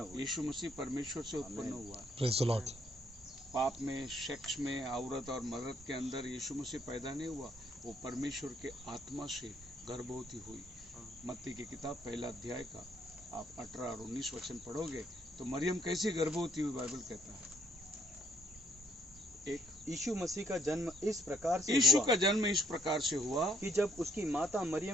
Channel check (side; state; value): both; normal; correlation 0.68